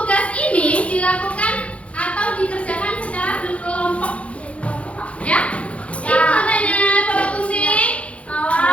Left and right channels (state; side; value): late; right; 0.063 ms